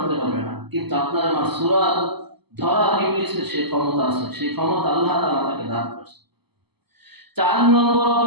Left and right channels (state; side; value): late; left; 0.97 ms